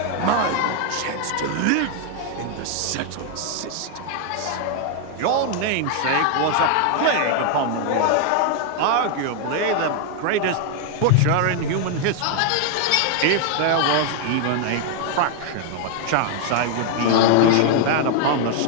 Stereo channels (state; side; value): different; both; correlation 0.00